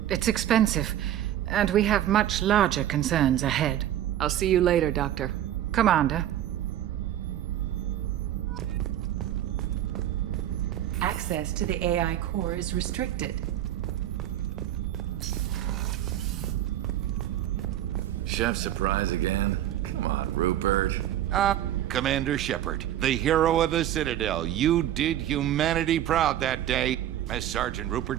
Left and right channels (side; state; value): left; quieter; 12.0 dB